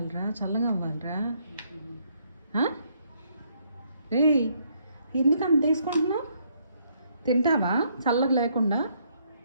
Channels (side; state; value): both; inverted; correlation -0.70